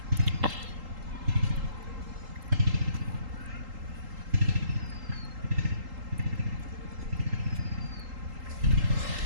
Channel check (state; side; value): late; left; 3.8 ms